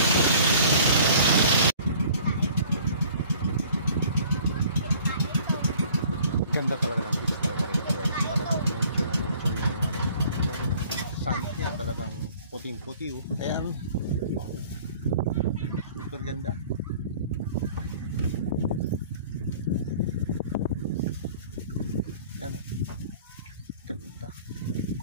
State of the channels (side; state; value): both; inverted; correlation -0.51